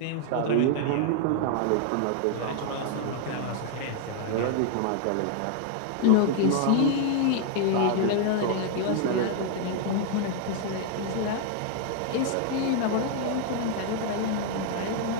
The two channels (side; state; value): both; different; correlation 0.00